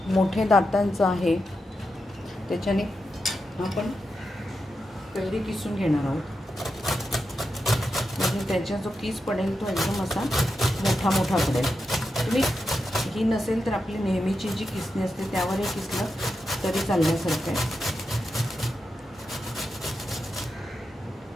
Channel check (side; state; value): both; normal; correlation 0.88